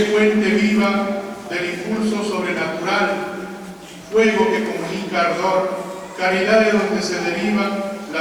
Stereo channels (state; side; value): identical; both; correlation 1.00